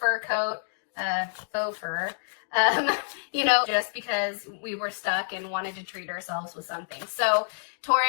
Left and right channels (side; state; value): right; silent; digital silence